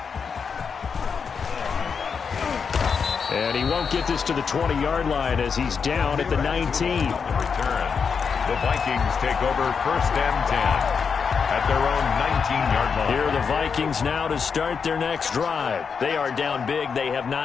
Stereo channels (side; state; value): right; quieter; 6.0 dB